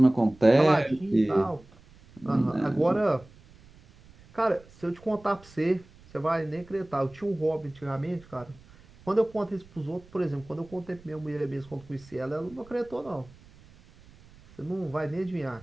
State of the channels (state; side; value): noise; right; rumble, 24 dB below the sound